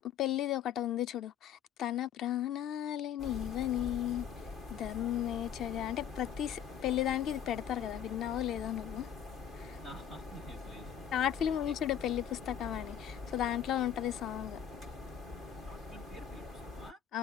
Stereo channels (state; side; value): quieter; right; 9.4 dB